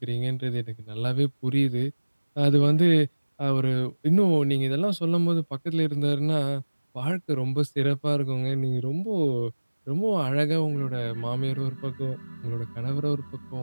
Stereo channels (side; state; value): both; inverted; correlation -1.00